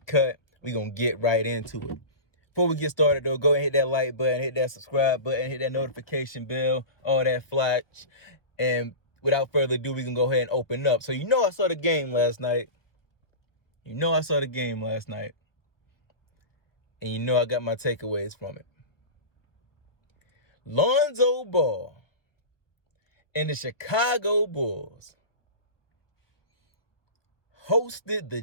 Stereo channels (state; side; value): late; right; 1.1 ms